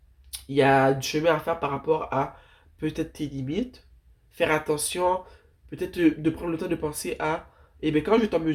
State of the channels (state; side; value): identical; both; correlation 1.00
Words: Il y a du chemin à faire par rapport à peut-être tes limites, faire attention, peut-être de prendre le temps de penser à, eh bien, quand je suis en